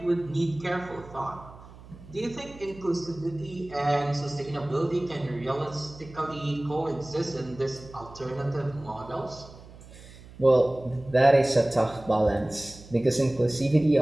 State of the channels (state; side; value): noise; right; hum, 19 dB below the sound